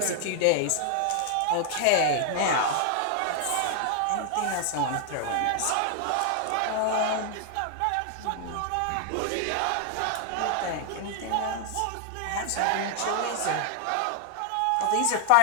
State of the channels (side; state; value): both; different; correlation 0.00